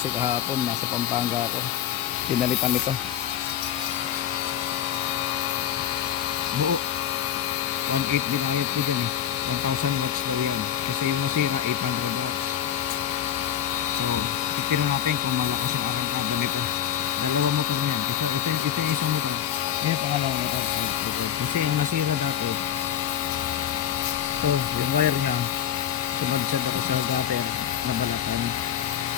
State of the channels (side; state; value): right; quieter; 10.0 dB